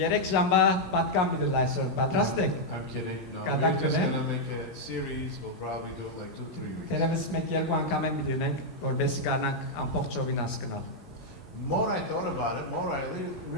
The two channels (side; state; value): both; normal; correlation -0.03